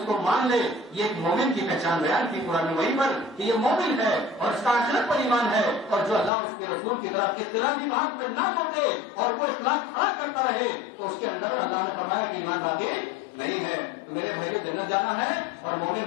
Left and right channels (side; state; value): right; drops out; at 6.3 s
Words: کو مان لے۔ یہ ایک مومن کی پہچان بیان کی قرآن وحی پر کہ یہ مومن ہے اور اس کا آخرت پر ایمان ہے، اور جو اللہ اور اس کے رسول کی طرف اختلافی بات میں نہ لوٹے اور وہ اخلاق کھڑا کرتا رہے تو اس کے اندر اللہ نے فرمایا کہ ایمان باقی نہیں ہے۔ تو میرے بھائیوں، جنت جانا ہے اور مومن